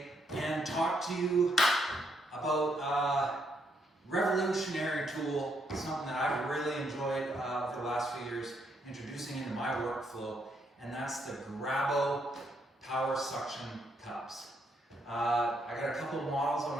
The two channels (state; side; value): normal; both; correlation 0.75